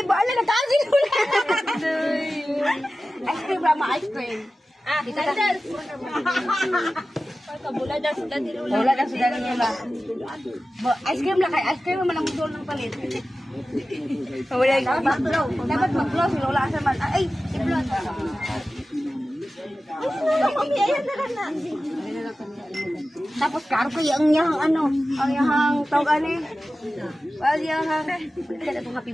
birthday. Nagkasi ko na. Ice cream ba? Ice cream. Kita ka. Wala daw sudah niya ba? Ice cream lang kay ice cream man ang mudol ng palit. Dapat mag-blow si Lola sa man. Ay, i-blow. Tapos karo kaya ang yahang ano, ang yahang tawag ani. Well, yahang kada tong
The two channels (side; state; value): both; normal; correlation 0.95